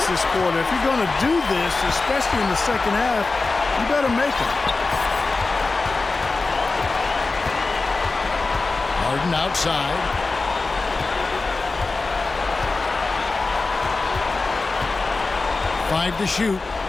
this quarter. If you're going to do this, especially in the second half, you better make it. Harden outside. Five to shoot.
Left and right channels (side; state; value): right; quieter; 3.7 dB